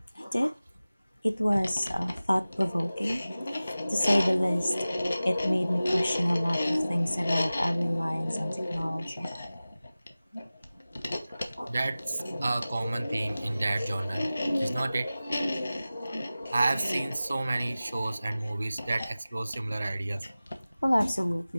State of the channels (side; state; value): both; inverted; correlation -0.97